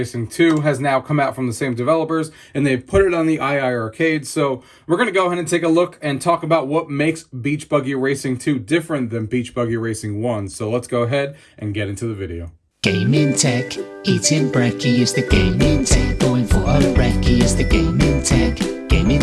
2 has now come out from the same developers, and they've put it on the iiRcade. So we're going to go ahead and take a look and talk about what makes Beach Buggy Racing 2 different than Beach Buggy Racing 1. So let's go ahead and get into the video. Gaming tech, eating brekkie is the gaming tech. Going for a brekkie is the gaming tech. Gaming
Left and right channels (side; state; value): both; identical; correlation 1.00